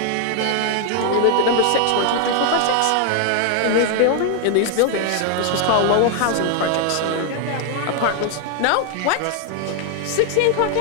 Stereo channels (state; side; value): different; both; correlation 0.00